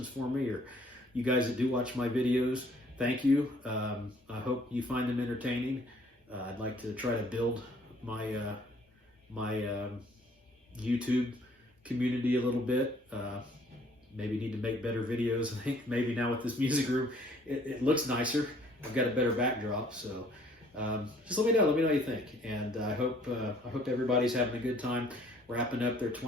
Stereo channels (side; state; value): both; normal; correlation 0.59